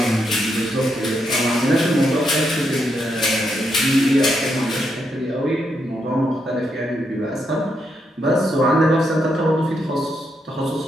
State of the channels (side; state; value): both; normal; correlation 0.80